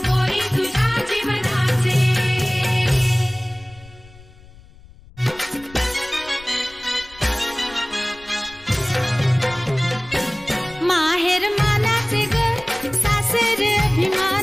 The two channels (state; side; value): noise; left; rumble, 22 dB below the sound